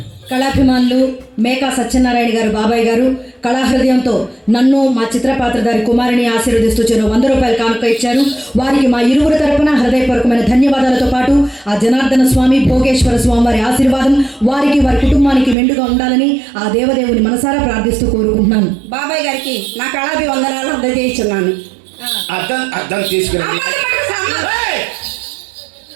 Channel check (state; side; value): drops out; left; at 15.6 s